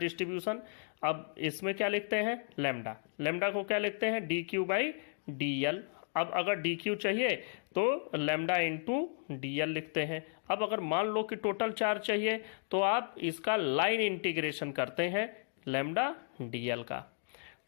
अब इसमें क्या लिखते हैं लेमडा, लेमडा को क्या लिखते हैं D Q by D L. अब अगर डी क्यू चाहिए तो लेमडा इंटू डी एल लिखते हैं। अब अगर मान लो कि टोटल चार्ज चाहिए तो आप इसका लाइन इंटीग्रेशन करते हैं लेमडा डी एल का।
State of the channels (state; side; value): silent; right; digital silence